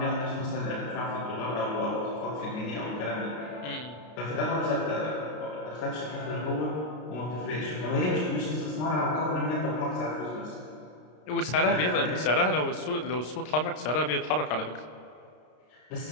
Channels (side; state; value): right; late; 33 ms